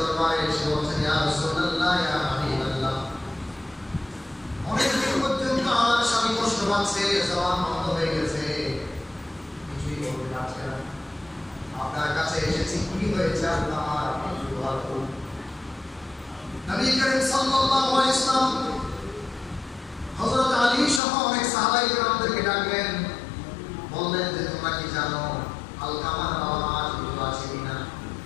এসে বলছেন, ইয়া রাসূলুল্লাহ, ইয়া হাবিবাল্লাহ, অনেকদিন পর্যন্ত আমার স্বামী কষ্ট পাচ্ছে, জবান বন্ধ হয়ে গেছে, কিছুই বলতে পারছে না। আপনার কাছে এসেছি, কি হয়েছে আল্লাহ আমার একটু দোয়া করুন। নবী করিম সাল্লাল্লাহু আলাইহি ওয়াসাল্লাম হযরত আলী সহ অনেক সাহাবায়ে কেরামদেরকে ডাকলেন, বললেন যে তোমরা কি জানো আলকামার বাবা মা জীবিত আছে কিনা?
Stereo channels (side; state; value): right; drops out; at 21.0 s